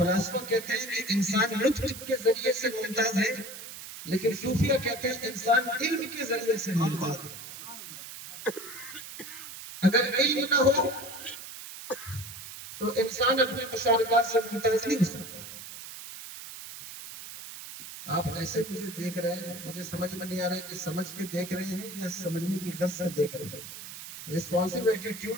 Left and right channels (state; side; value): noise; right; hiss, 12 dB below the sound